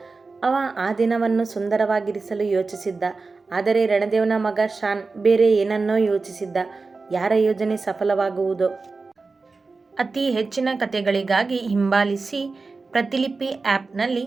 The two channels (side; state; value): left; quieter; 4.0 dB